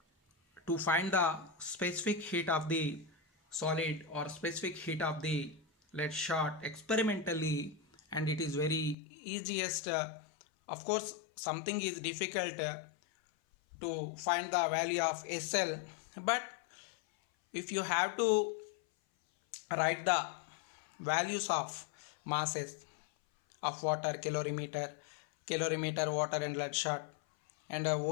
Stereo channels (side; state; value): right; drops out; at 9.0 s